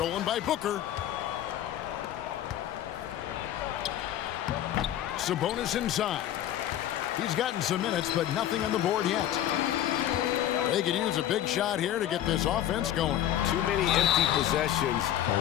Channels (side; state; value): right; quieter; 11.9 dB